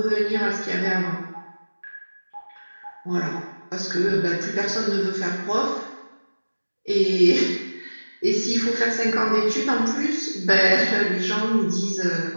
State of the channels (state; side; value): inverted; both; correlation -1.00